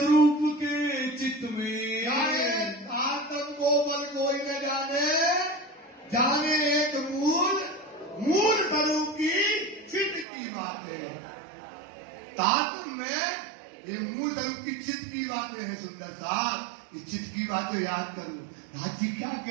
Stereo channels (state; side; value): drops out; left; at 10.2 s